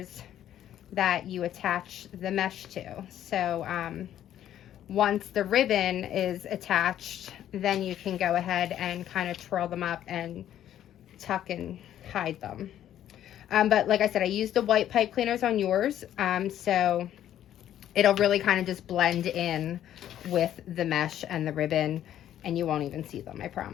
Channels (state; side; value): quieter; right; 11.3 dB